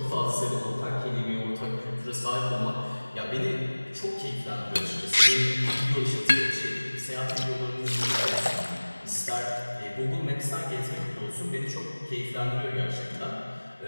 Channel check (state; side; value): inverted; both; correlation -1.00